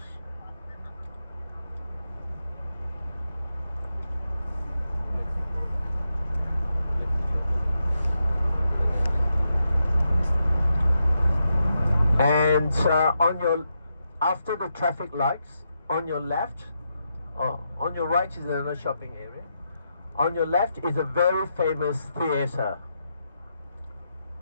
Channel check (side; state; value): both; inverted; correlation -0.84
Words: And after the traffic lights, on your left, on your right is another shopping area. On your left is a very famous theatre.